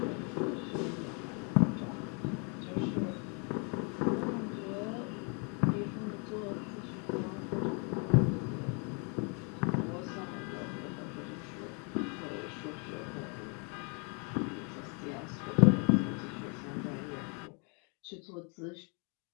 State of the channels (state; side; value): quieter; right; 36.1 dB